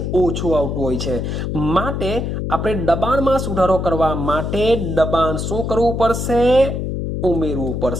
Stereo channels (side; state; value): left; noise; hum, 3 dB below the sound